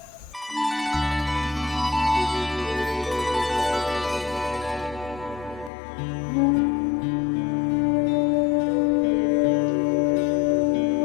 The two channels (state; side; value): drops out; right; at 5.7 s